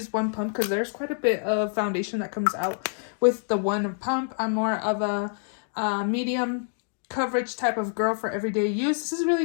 one pump because there's quite a bit of foundation that comes out with the one pump. I'm more of a medium coverage type of girl for everyday use. This is really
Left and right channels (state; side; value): silent; right; digital silence